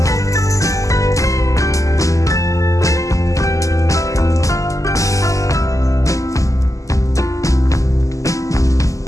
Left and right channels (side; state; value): right; late; 0.16 ms